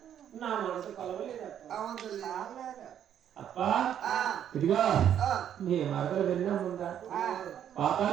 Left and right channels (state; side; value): quieter; left; 9.8 dB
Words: నా మనసు కలవలేదప్ప అప్ప ఇదిగా నీ మరదలు విన్నాముందా